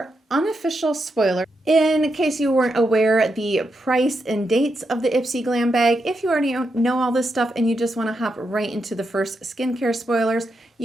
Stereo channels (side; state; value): both; normal; correlation 0.84